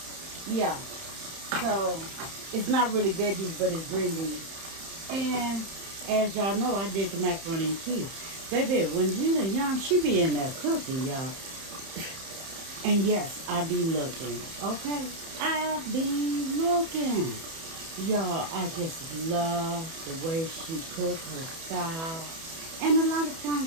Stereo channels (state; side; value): late; left; 31 ms